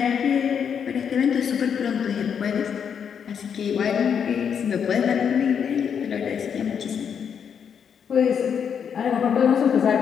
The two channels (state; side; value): quieter; right; 7.5 dB